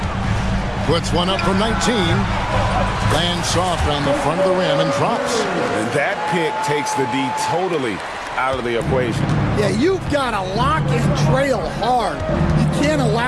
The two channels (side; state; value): both; identical; correlation 1.00